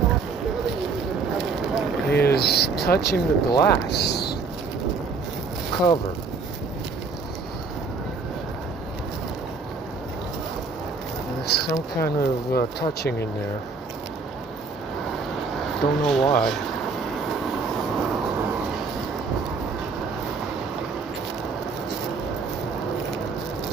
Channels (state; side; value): quieter; left; 4.5 dB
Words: is touching the glass cover. There's some kind of touching in there. Don't know why.